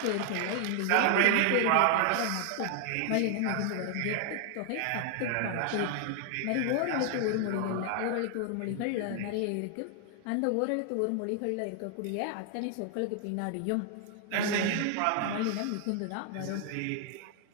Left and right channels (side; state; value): both; different; correlation 0.00